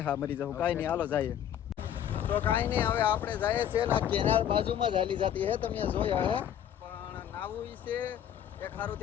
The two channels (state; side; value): quieter; right; 10.0 dB